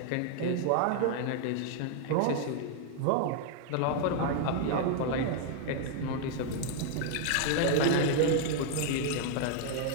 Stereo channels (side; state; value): both; different; correlation 0.00